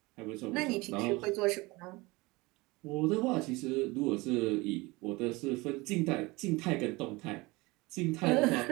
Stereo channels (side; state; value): left; quieter; 23.1 dB